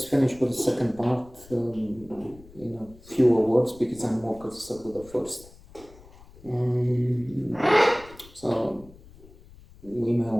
finish with the second part in a fewer words because I'm more concerned with the first. So we may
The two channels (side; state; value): left; noise; rumble, 23 dB below the sound